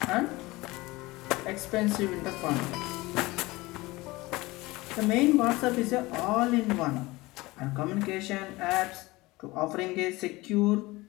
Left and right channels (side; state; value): right; quieter; 21.1 dB